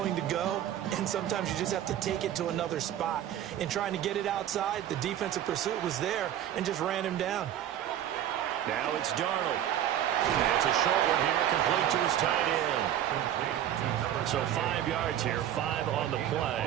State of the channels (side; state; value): left; quieter; 11.2 dB